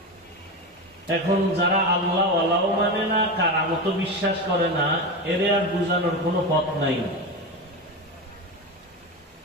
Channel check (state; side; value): normal; both; correlation 0.20